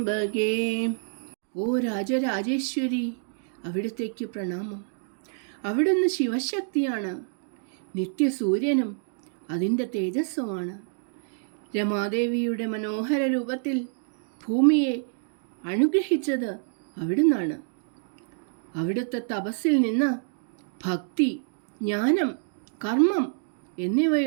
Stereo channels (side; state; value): left; silent; digital silence